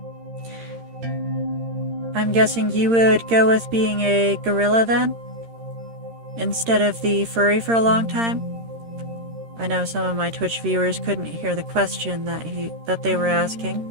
I'm guessing you would go with being a gorilla then? Instead of the furry for a long time? I know some of my Twitch viewers couldn't hear the question that they were asking.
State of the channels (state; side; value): late; left; 13 ms